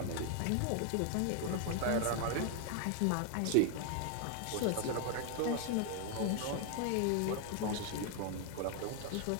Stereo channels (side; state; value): both; different; correlation 0.00